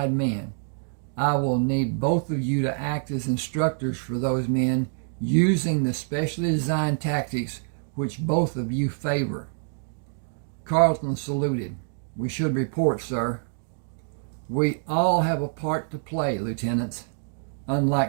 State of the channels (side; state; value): left; silent; 61 dB below the other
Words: men. I will need both of you to act as instructors for those men using the specially designed tactics which both of you favor. Carlton saluted. We should report, sir. We all have a part to play, lieutenants.